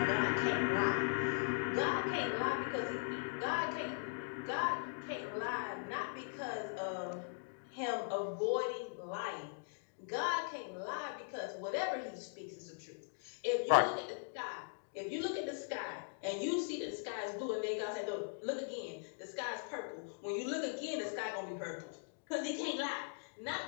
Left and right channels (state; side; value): silent; right; digital silence